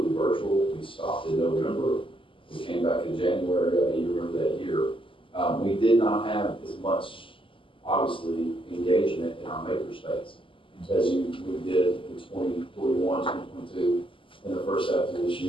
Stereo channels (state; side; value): late; right; 0.25 ms